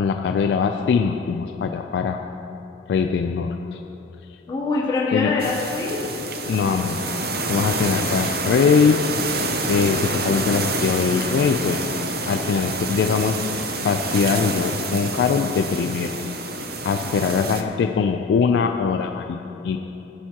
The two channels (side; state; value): right; quieter; 3.8 dB